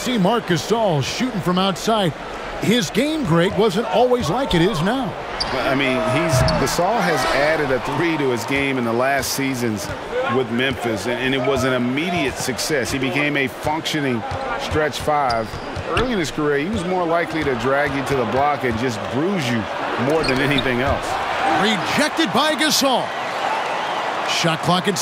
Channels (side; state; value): both; identical; correlation 1.00